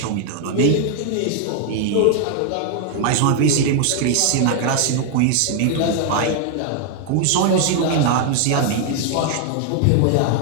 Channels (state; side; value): different; both; correlation 0.00